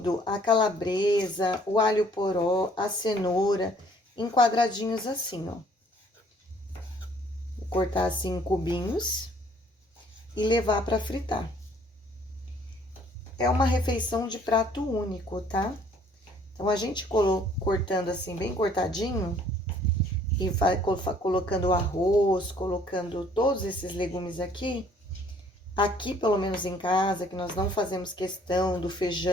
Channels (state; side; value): normal; both; correlation 0.60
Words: a calabresa, o alho poró, a cenoura, em quadradinhos assim, ó. Vou cortar assim em cubinhos e levar para fritar. É uma refeição de prato único, tá? Então, a gente cortando assim, bem cortadinho, e vai colocando o arroz, colocando todos esses legumes aqui. Aqui, pelo menos em casa, que nós não fazemos questão do